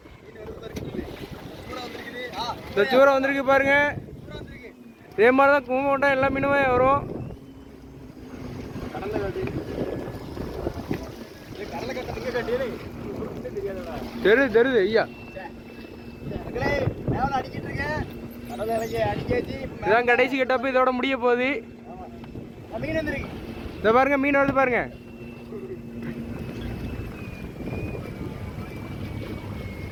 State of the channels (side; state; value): both; identical; correlation 1.00